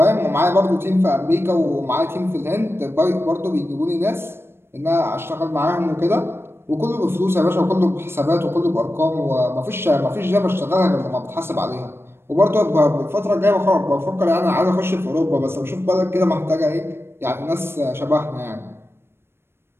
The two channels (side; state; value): left; late; 0.12 ms